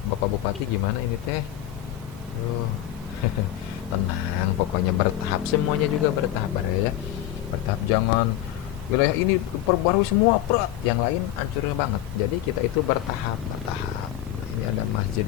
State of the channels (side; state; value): right; quieter; 13.0 dB